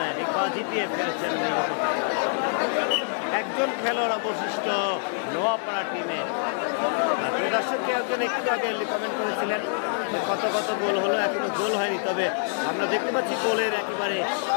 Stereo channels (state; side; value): silent; right; digital silence